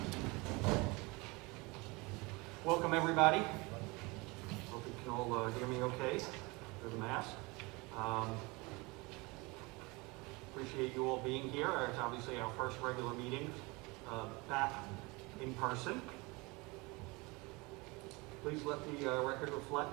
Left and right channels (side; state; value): left; quieter; 25.5 dB